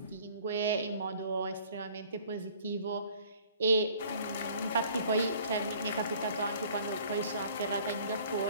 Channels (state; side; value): inverted; both; correlation -0.53